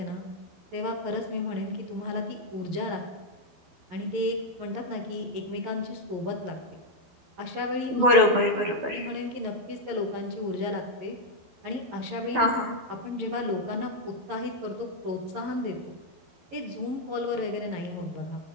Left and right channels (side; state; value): left; late; 12 ms